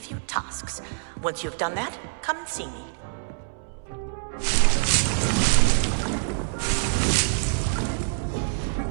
tasks. Once you've done that, come and see me.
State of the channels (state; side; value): silent; left; 61 dB below the other